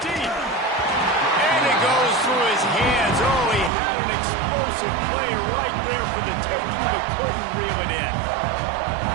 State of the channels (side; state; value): left; drops out; at 3.7 s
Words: And it goes through his hands. Oh, he had an explosive play right there for the taking, but couldn't reel it in.